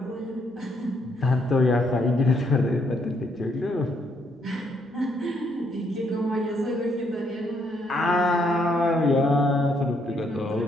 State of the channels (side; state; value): both; normal; correlation 0.72